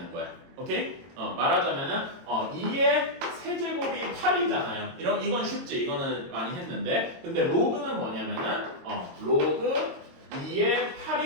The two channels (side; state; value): left; late; 22 ms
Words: 거야. 오케이? 말하자면은 2의 세제곱이 8이잖아요. 이건 쉽지. 이거는 많이 했는데 근데 로그는 뭐냐면은 로그 2의